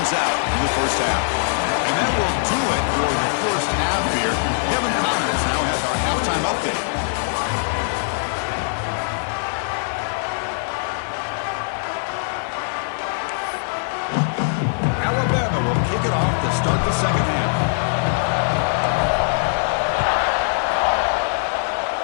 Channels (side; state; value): right; silent; digital silence